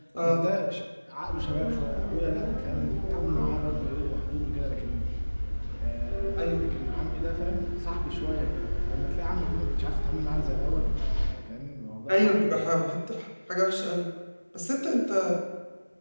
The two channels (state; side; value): inverted; both; correlation -1.00